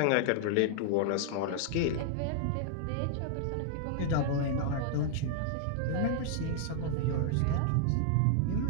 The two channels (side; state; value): both; different; correlation 0.00